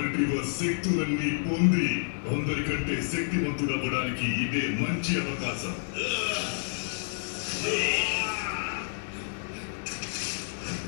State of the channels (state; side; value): silent; right; digital silence